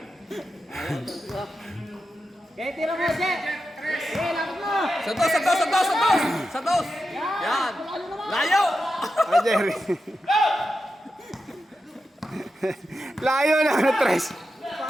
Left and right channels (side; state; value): both; normal; correlation 0.89